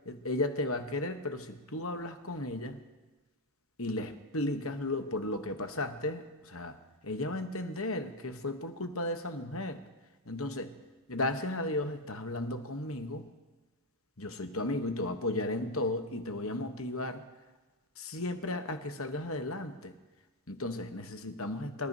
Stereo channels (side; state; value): both; normal; correlation 0.06